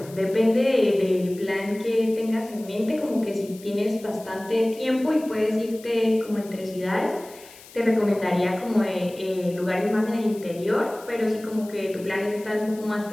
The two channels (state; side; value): noise; left; hiss, 21 dB below the sound